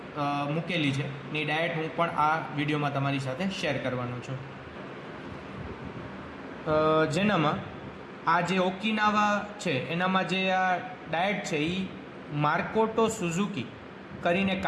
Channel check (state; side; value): identical; both; correlation 1.00